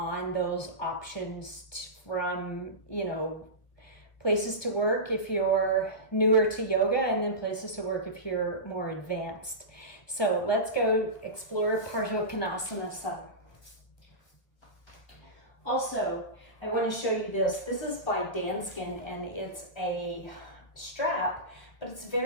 those options from, places to work if you're newer to yoga, and then places to work if you're more advanced. So let's go explore Parsvakonasana. Also, I want to show you this. This is by Danskin, and it's a strap, but it's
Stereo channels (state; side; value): late; right; 1.4 ms